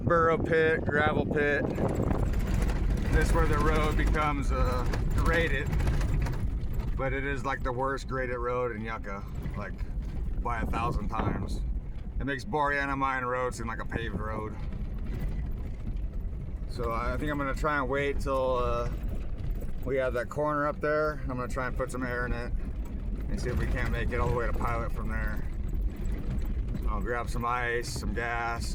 pit, gravel pit. This is where the road becomes graded, but it is like the worst graded road in Yucca, like by 1,000 times. It makes Boreana Mine Road seem like a paved road. So I think I'm gonna try and wait till we have that corner up there. I'm gonna try and put some air in it and see if we can't make it all the way to Pilot from there. I'll grab some ice, some gas,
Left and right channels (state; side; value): identical; both; correlation 1.00